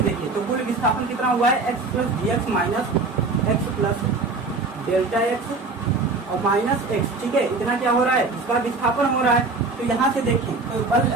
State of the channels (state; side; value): quieter; left; 3.7 dB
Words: देखिए तो कुल विस्थापन कितना हुआ है, x plus dx minus x plus delta x और माइनस x, ठीक है, इतना क्या हो रहा है, इसका विस्थापन हो रहा है। तो यहाँ से देखें तो